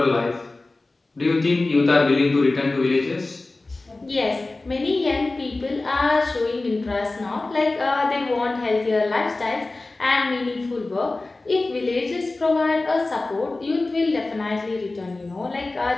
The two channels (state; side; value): quieter; right; 3.2 dB